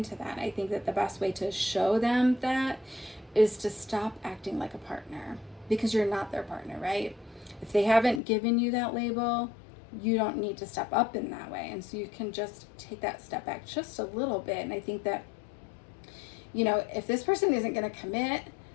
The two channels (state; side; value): drops out; right; at 8.2 s